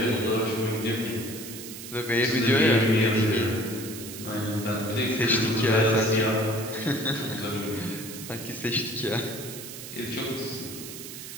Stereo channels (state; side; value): noise; right; hiss, 11 dB below the sound